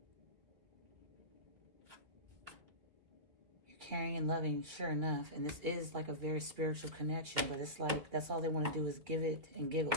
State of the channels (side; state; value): left; late; 2.1 ms